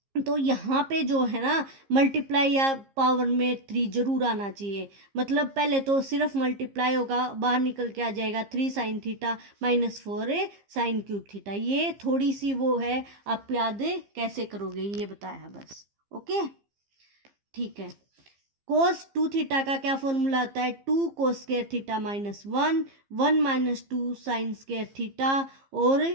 तो यहाँ पे जो है ना मल्टीप्लाई या पावर में 3 जरूर आना चाहिए। मतलब पहले तो सिर्फ मल्टीप्लाई होगा, बाहर निकल के आ जाएगा 3 sine theta minus 4 sine cube theta. ये थोड़ी सी वो है, आप याद कैसे करोगे ये बताया बस। ओके, ठीक है। कोस 2 थीटा का क्या फॉर्मूला आता है? 2 cos square theta minus 1 minus 2 sine square theta और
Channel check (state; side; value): late; left; 15 ms